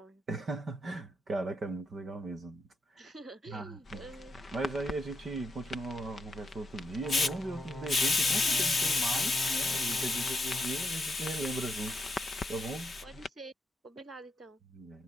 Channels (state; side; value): normal; both; correlation 0.81